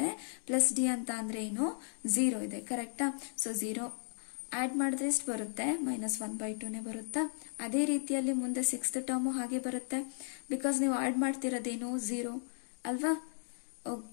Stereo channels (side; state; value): right; silent; digital silence